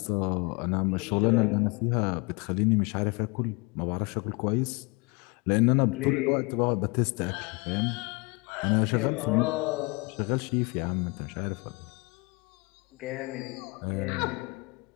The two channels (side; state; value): right; quieter; 28.1 dB